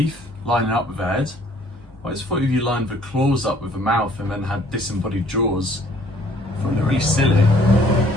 lining up with the head. I just thought if you lined the claws up with the mouth and then had disembodied jaws, I find it really silly.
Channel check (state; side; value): normal; both; correlation 0.58